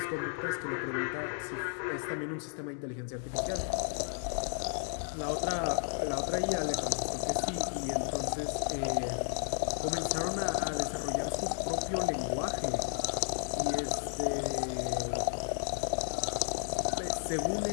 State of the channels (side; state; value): right; silent; 56 dB below the other